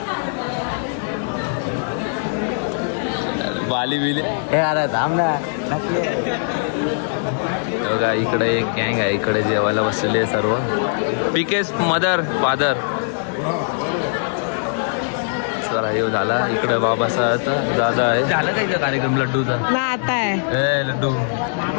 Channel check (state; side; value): silent; right; 63 dB below the other